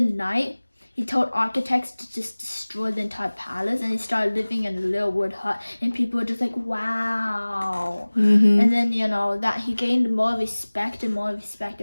night, he told architects to just destroy the entire palace, and he started living in a little wood hut, and people were just like, wow. And then that he gained more respect and more respect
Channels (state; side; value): inverted; both; correlation -1.00